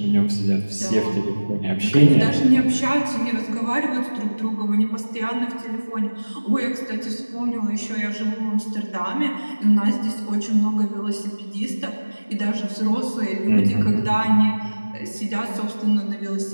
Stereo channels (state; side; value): inverted; both; correlation -1.00